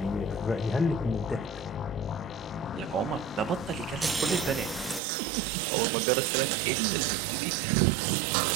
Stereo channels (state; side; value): drops out; left; at 5.0 s